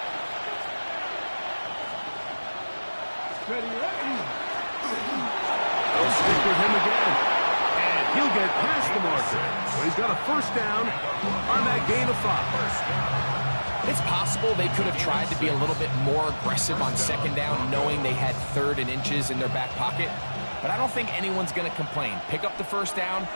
They'll stick with him again. And he'll get past the marker. So he's got a first down on that gain of 5. It's possible they could have tried to be a little bit more aggressive on second down, knowing they had 3rd and inches in their back pocket. But I don't think anyone's going to complain. Pick up the first down,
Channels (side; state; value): both; inverted; correlation -1.00